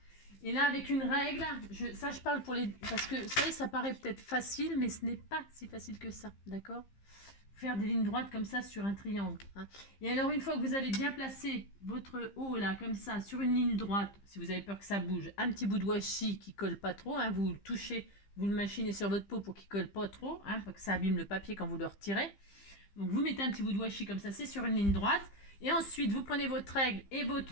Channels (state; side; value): late; right; 15 ms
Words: et là avec une règle, je parle pour les... Parce que ça paraît peut-être facile, mais ce n'est pas si facile que ça, d'accord? Faire des lignes droites comme ça sur un triangle. Hein. Et alors une fois que vous avez bien placé votre haut là comme ça sur une ligne droite, si vous avez peur que ça bouge, un petit bout de washi qui colle pas trop, hein, vous le touchez, vous le machinez sur votre peau pour qu'il colle pas trop, hein, pour que ça abîme le papier quand vous le retirez. Donc vous mettez un petit bout de washi comme ça, c'est sur une ligne droite. Et ensuite vous prenez votre règle et